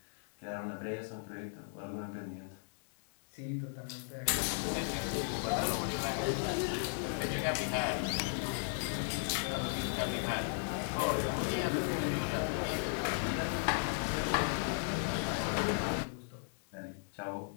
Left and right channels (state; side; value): silent; right; 54 dB below the other